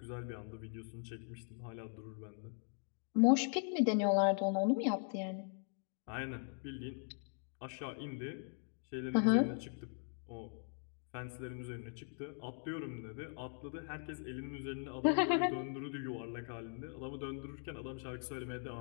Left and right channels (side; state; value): right; silent; 51 dB below the other